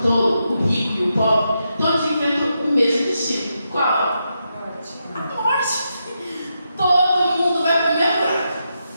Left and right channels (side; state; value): both; inverted; correlation -0.84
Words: tolo, o rico e o pobre, todos enfrentam o mesmo destino. Qual? A morte. Todo mundo vai para o mesmo buraco.